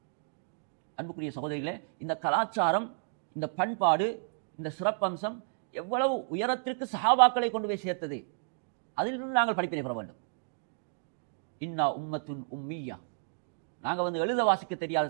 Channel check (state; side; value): silent; left; digital silence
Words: அன்புக்குரிய சகோதரிகளே, இந்த கலாச்சாரம், இந்த பண்பாடு, இந்த சிறப்பம்சம் எவ்வளவு உயரத்திற்கு சஹாபாக்களை கொண்டு போய் சேர்த்தது, அதிலிருந்து நாங்கள் படிப்பினை பெற வேண்டும். இன்னா உம்மத்துன் உம்மியா, நாங்கள் எழுத வாசிக்க தெரியாத